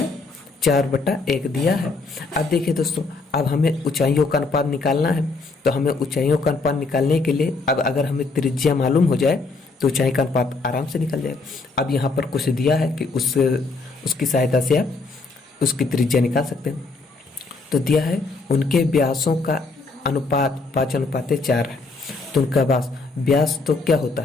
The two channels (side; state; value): right; quieter; 3.8 dB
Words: 4/1 दिया है। अब देखिए दोस्तों, अब हमें ऊंचाइयों का अनुपात निकालना है। तो हमें ऊंचाइयों का अनुपात निकालने के लिए, अब अगर हमें त्रिज्या मालूम हो जाए तो ऊंचाई का अनुपात आराम से निकल जाएगा। अब यहाँ पर कुछ दिया है कि उसकी सहायता से आप उसकी त्रिज्या निकाल सकते हैं। तो दिया है उनके व्यासों का अनुपात 5:4 है। तो उनका व्यास तो क्या होता